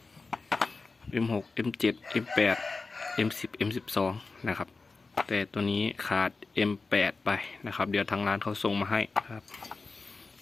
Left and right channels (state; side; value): quieter; right; 4.0 dB